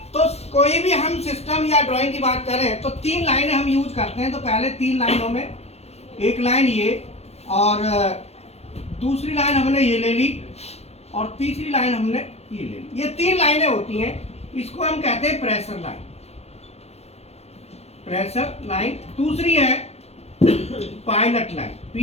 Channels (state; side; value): late; right; 0.31 ms